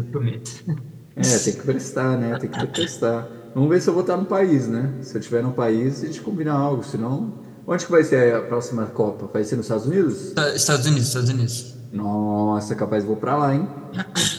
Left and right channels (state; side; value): identical; both; correlation 1.00